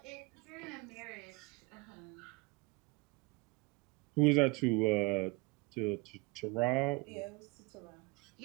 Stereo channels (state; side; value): quieter; left; 26.4 dB